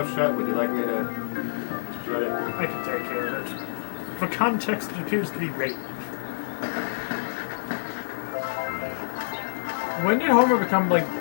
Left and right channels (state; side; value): silent; right; digital silence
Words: shut. Would you like me to shut it? I can take care of it. For context, it appears to be rape. When did Homer become like